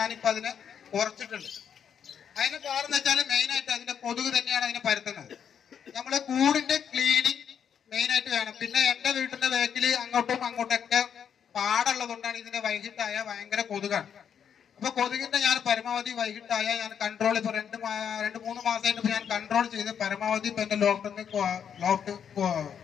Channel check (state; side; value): quieter; right; 8.0 dB